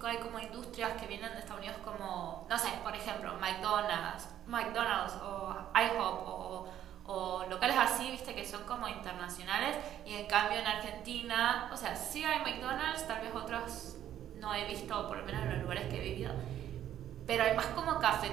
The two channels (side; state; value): left; quieter; 11.1 dB